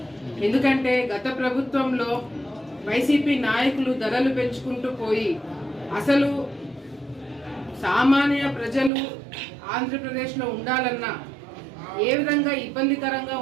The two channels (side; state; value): left; drops out; at 8.9 s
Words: ఎందుకంటే గత ప్రభుత్వంలో వైసీపీ నాయకులు ధరలు పెంచుకుంటూ పోయి అసలు సామాన్య ప్రజలు ఆంధ్రప్రదేశ్లో ఉండాలన్నా ఏ విధంగా ఇబ్బందికరంగా